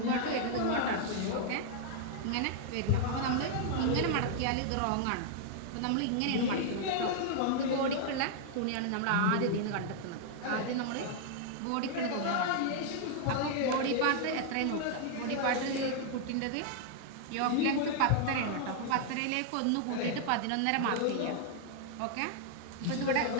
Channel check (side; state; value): both; different; correlation -0.01